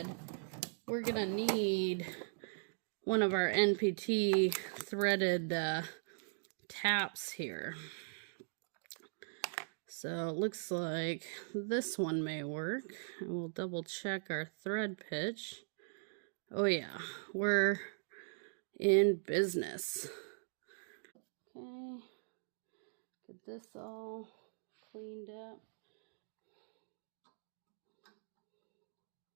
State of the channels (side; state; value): left; silent; digital silence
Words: we're gonna need one of our NPT threaded taps here. So it looks like this one may work. And we'll double check our thread pitch. Oh yeah, we're in business. Okay, get this all cleaned up.